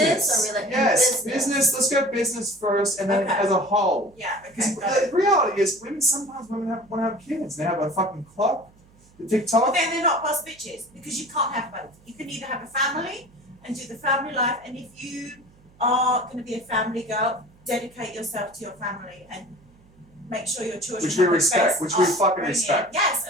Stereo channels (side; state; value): right; noise; hum, 29 dB below the sound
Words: or Yes, business. Let's go business first, and then Okay. as a whole. Yeah, Because okay. the reality is, sometimes women want to have kids. They have a fucking clock, the But TikTok. then they're not boss bitches because you can't have both. You can either have a family and do the family life, and if you are going to be a family girl, dedicate yourself to your family and make sure your children Which we have the respect, best which we fucking upbringing. respect. Yes,